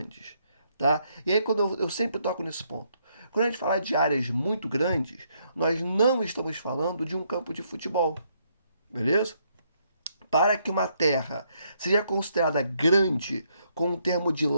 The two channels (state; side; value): inverted; both; correlation -0.73